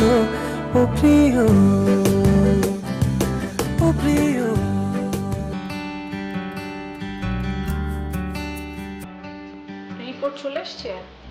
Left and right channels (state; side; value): identical; both; correlation 1.00